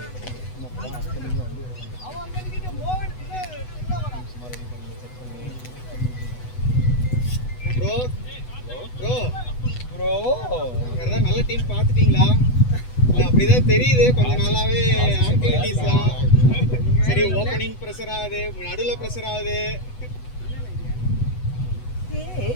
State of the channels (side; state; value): right; late; 8.1 ms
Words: ப்ரோ ப்ரோ ப்ரோ வேற நல்ல டீம் பார்த்துட்டீங்களா? இல்ல அப்படிதான் தெரியுது கொஞ்ச நாளாவே ஆக்டிவிட்டீஸ்லாம். சரி ஓப்பனிங் ப்ரெஷர் ஆகுது, நடுவுல ப்ரெஷர் ஆகுது.